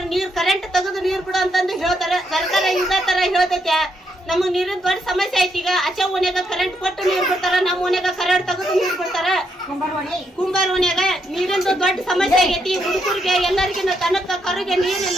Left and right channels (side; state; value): both; normal; correlation 0.78